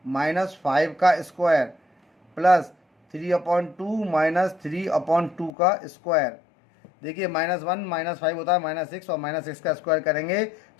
-5 का स्क्वायर प्लस 3/2 -3/2 का स्क्वायर। देखिए -1 -5 होता है -6 और -6 का स्क्वायर करेंगे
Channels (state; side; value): drops out; right; at 5.5 s